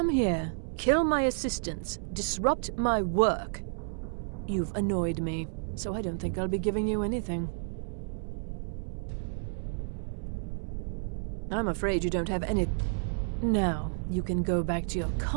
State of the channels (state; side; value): silent; left; 57 dB below the other